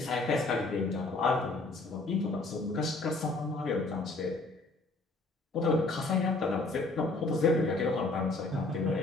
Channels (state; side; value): quieter; right; 3.3 dB